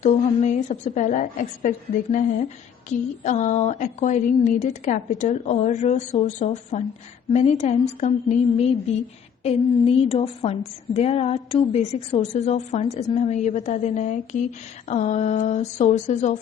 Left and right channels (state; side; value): quieter; right; 7.9 dB